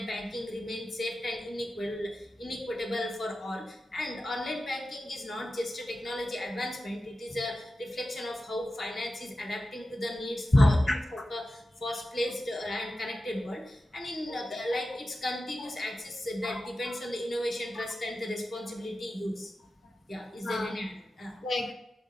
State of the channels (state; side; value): normal; both; correlation 0.93